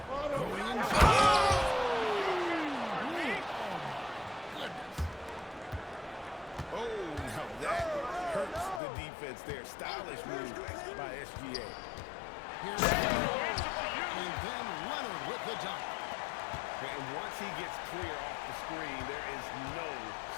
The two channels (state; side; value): drops out; right; at 8.8 s